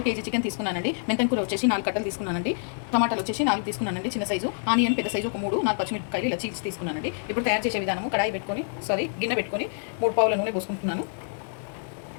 కేజీ చికెన్ తీసుకున్నానండి. మెంతం కూర వచ్చేసి 4 కట్టలు తీసుకున్నానండి. టమాటాలు వచ్చేసి 4 తీసుకున్నానండి చిన్న సైజు. ఆనియన్ పెద్ద సైజు ఒక 3, 4 పచ్చిమిరపకాయలు ఇలా చీల్చి తీసుకున్నానండి. ఇప్పుడు తయారు చేసే విధానము కడాయి పెట్టుకొని గిన్నె పెట్టుకొని 3 పావుల నూనె పోసుకుంటున్నాను.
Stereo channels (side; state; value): right; silent; digital silence